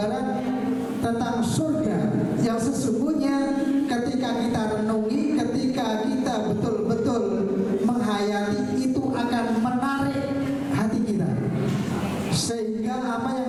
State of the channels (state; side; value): identical; both; correlation 1.00